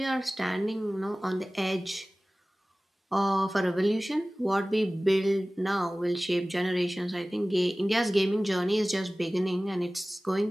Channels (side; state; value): both; normal; correlation 0.98